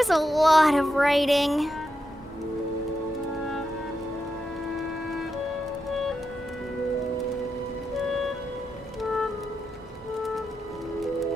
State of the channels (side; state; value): both; normal; correlation 0.86